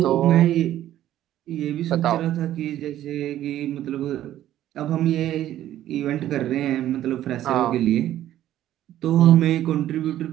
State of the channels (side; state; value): left; quieter; 12.7 dB